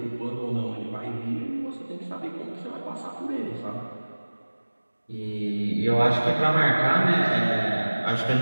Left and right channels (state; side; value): inverted; both; correlation -1.00